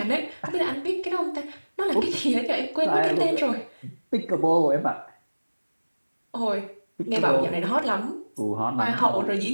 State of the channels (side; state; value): both; inverted; correlation -1.00